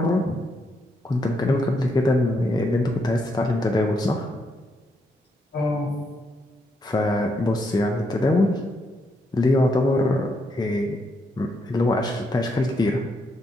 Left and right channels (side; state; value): both; normal; correlation 0.78